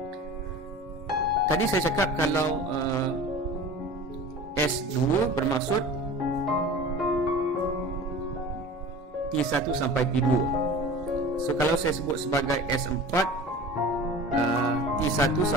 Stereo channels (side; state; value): both; normal; correlation 0.38